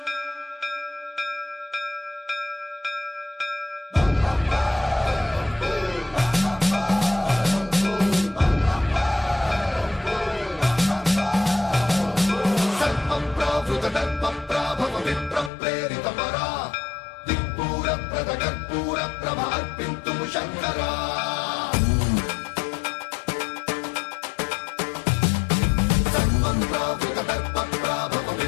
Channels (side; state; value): right; drops out; at 15.5 s